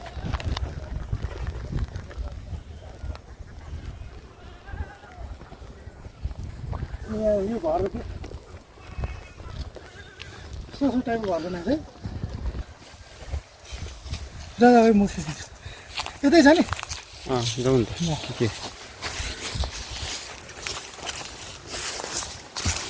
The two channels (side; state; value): both; identical; correlation 1.00